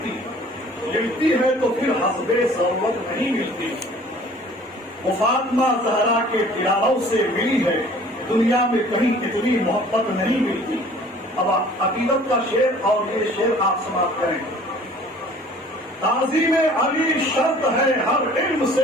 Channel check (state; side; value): normal; both; correlation 0.51